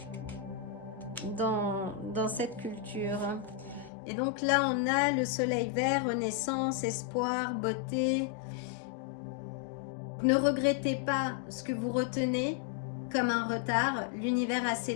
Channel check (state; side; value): drops out; right; at 3.9 s